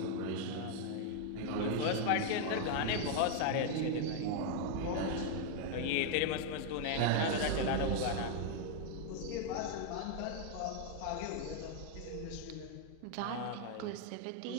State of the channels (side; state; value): both; different; correlation 0.00